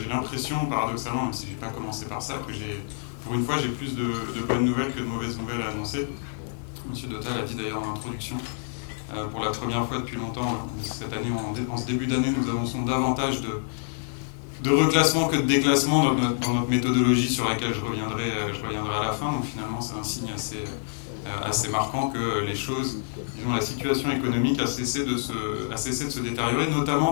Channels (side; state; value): right; silent; digital silence